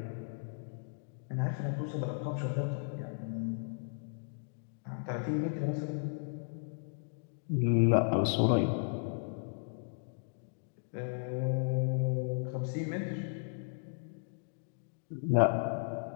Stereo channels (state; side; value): silent; right; digital silence